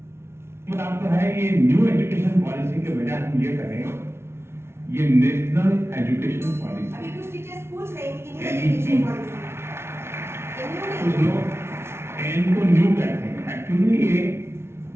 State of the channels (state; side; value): late; left; 0.12 ms